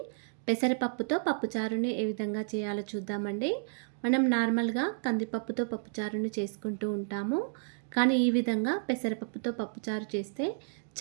పెసరపప్పుతో పప్పుచారుని ఏ విధంగా చేయాలో చూద్దామండి. మనం నార్మల్గా కందిపప్పుతో పప్పుచారుని చేసుకుంటూ ఉంటాము, కానీ ఈ విధంగా పెసరపప్పుతో పప్పుచారు చేస్తే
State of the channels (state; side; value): silent; left; digital silence